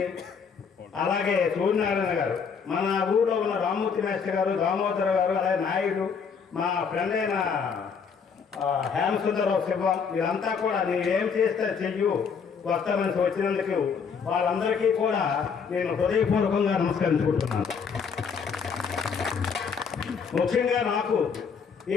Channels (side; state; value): right; quieter; 6.2 dB